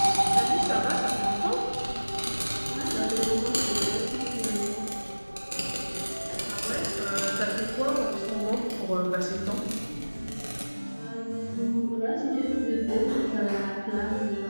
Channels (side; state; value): both; inverted; correlation -1.00